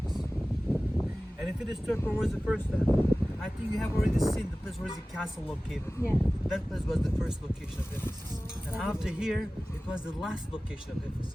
And if it is third, where was the first time? I think you have already seen the place where is the castle located. Yeah. That place was the first location of Ephesus. And after here, it was the last location of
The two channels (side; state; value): both; normal; correlation 0.97